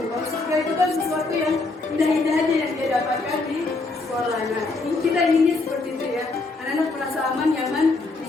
Kalau surga itu kan sesuatu yang indah-indah aja yang dia dapatkan di sekolah. Nah, kita inginnya seperti itu ya. Anak-anak merasa aman, nyaman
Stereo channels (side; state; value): right; quieter; 3.5 dB